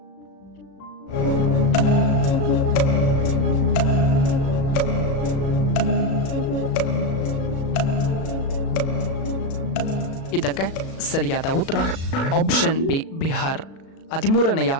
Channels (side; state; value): right; late; 37 ms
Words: ಇದಕ್ಕೆ ಸರಿಯಾದ ಉತ್ತರ ಆಪ್ಷನ್ ಬಿ ಬಿಹಾರ್. 13ನೆಯ